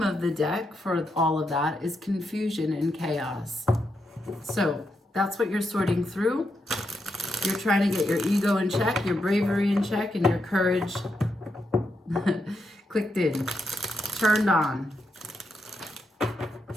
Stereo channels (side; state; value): both; normal; correlation 0.83